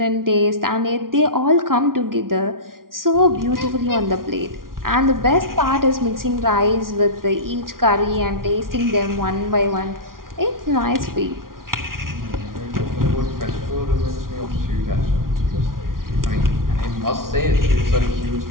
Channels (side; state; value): left; late; 0.92 ms